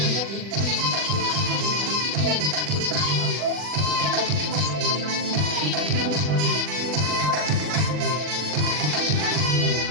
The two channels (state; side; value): late; left; 40 ms